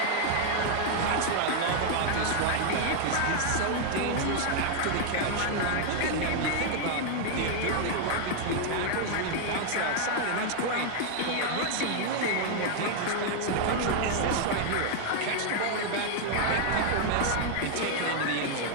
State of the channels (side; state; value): both; different; correlation 0.00